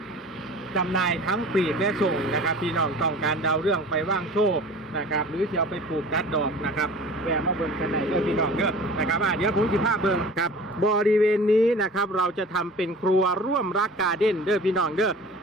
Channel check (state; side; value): normal; both; correlation 0.41